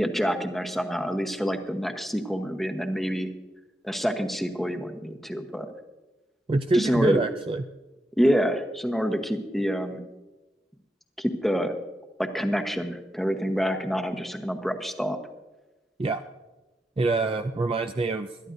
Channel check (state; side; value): normal; both; correlation 0.86